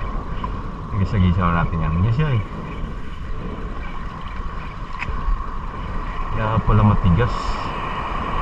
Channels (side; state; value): both; identical; correlation 1.00